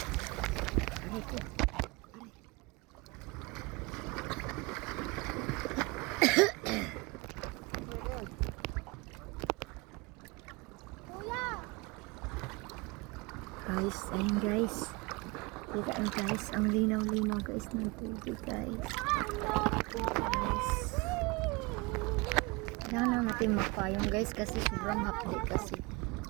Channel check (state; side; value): quieter; left; 25.7 dB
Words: Guys, ayun guys. Kita nyo guys, ang linaw-linaw guys ng tubig guys. Guys. Kailangan lang natin magpayong guys kasi sobrang hapdi kasi